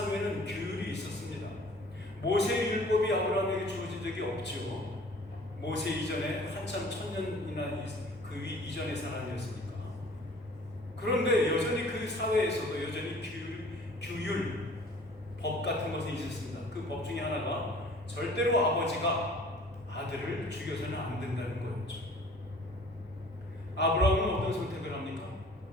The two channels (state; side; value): normal; both; correlation 0.50